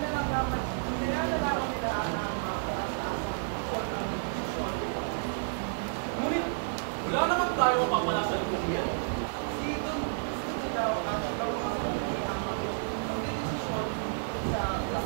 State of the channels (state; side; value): silent; left; digital silence